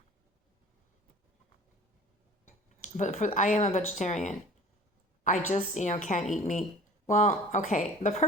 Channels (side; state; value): both; normal; correlation 0.45